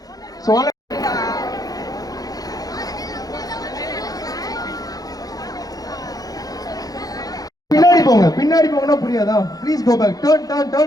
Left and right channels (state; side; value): late; right; 0.18 ms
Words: So பின்னாடி போங்கனா புரியாதா? Please go back. Turn